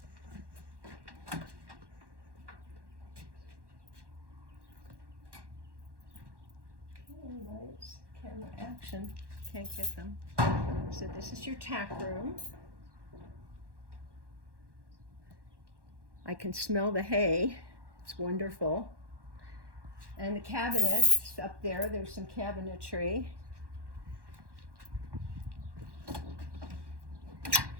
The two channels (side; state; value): left; late; 1.1 ms